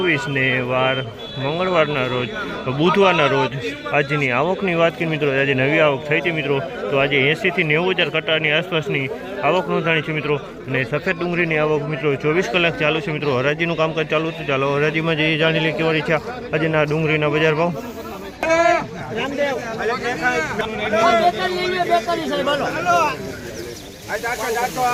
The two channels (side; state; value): both; identical; correlation 1.00